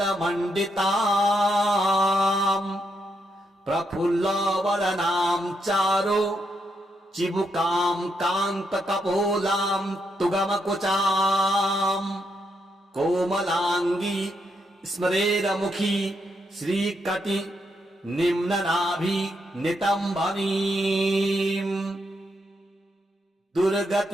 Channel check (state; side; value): normal; both; correlation 0.80